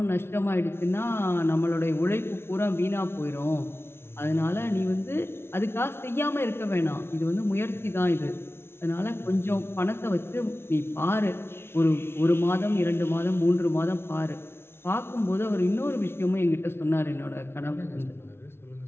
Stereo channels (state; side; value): late; right; 0.12 ms